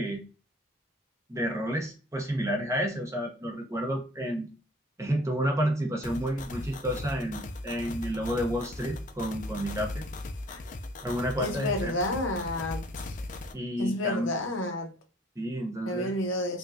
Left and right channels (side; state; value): both; normal; correlation 0.54